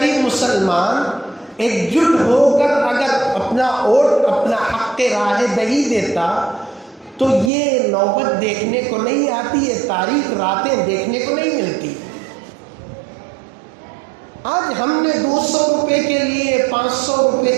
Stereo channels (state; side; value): drops out; left; at 7.5 s